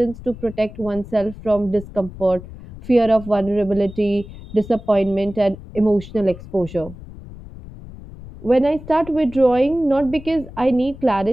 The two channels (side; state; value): left; noise; rumble, 15 dB below the sound